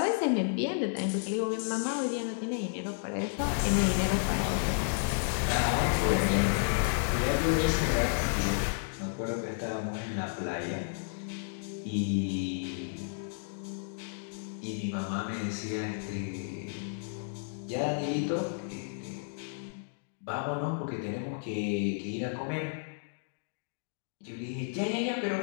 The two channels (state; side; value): silent; right; digital silence